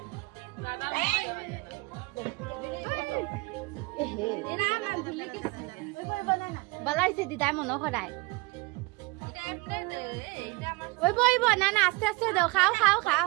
বলাইছে দিদাই মনো খদাই ওইব ওইব না না আস্তে আস্তে দাও খাও খাও খাও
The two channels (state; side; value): quieter; left; 25.1 dB